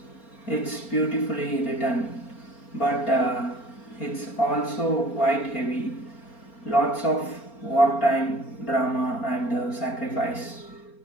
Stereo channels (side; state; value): right; late; 4.3 ms